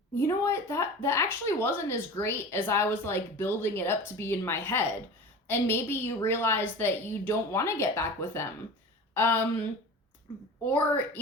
you know what, that actually wasn't as great as I was like building it up to be in my head. And maybe you realize that you don't want to get back with them. Or,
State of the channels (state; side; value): normal; both; correlation 0.35